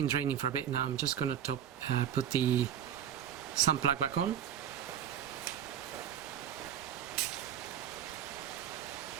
draining for a bit now. I'm just gonna put the sump plug back on.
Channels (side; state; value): left; quieter; 9.7 dB